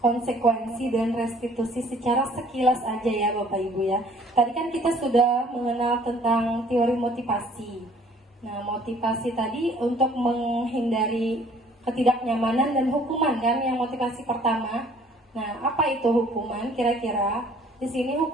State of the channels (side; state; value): both; normal; correlation 0.56